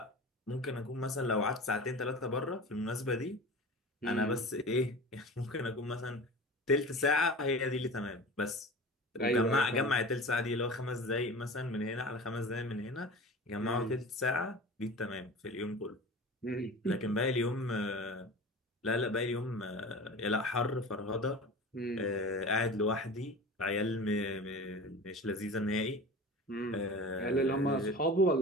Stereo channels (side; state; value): both; normal; correlation 0.35